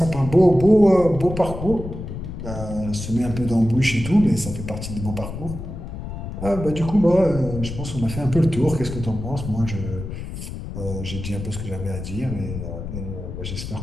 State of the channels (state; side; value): noise; left; rumble, 8 dB below the sound